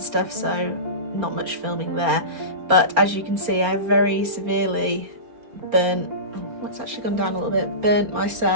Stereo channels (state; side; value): late; left; 4.3 ms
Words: stuff, so not much filming there. But as you can see, I've very severely burnt. Oh, it's actually gone down a little bit. Burnt